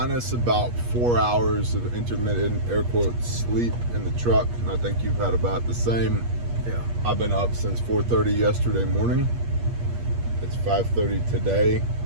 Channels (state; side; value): late; left; 8.4 ms